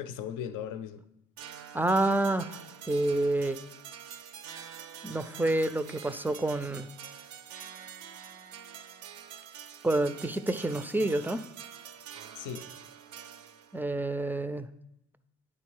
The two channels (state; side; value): normal; both; correlation 0.80